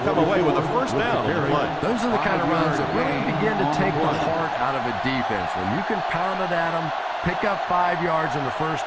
away with a 1st down on the play. Those are the kind of runs that really begin to take the heart out of a defense. When you can pound it at them, pick up 5 yards on the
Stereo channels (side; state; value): both; identical; correlation 1.00